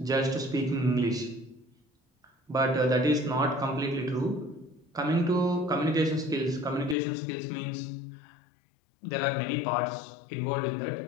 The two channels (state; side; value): drops out; right; at 7.0 s